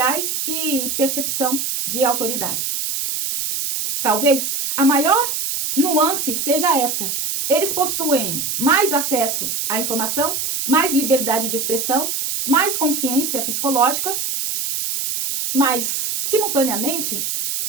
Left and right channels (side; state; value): right; noise; hiss, 2 dB below the sound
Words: e percepção de autoridade. Talvez a maior nuance seja esta: eles possuem mais acesso à informação, mais liberdade de expressão, mais consciência psicológica, mas, simultaneamente,